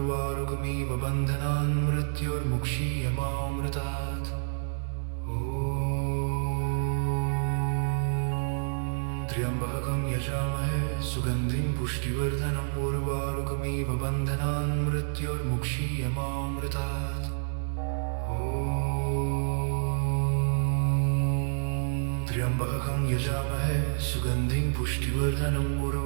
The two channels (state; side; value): silent; left; 59 dB below the other